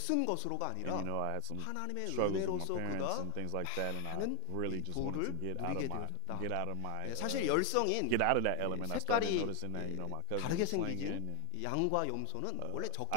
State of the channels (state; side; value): different; both; correlation 0.01